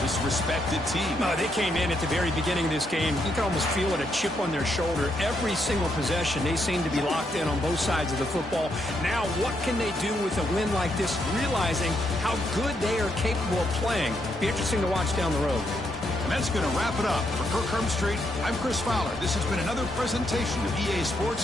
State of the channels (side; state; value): both; normal; correlation 0.78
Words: this respected team. They came in at the very beginning of this game. You can almost feel it, a chip on their shoulder. Every single possession, they seem to be locked in on both sides of the football. Now, what can they do with a win like this, realizing how good they are capable of playing? Be interesting to watch down the road. And that's going to wrap it up. For Kirk Herbstreit, I'm Chris Fowler. This has been another presentation of EA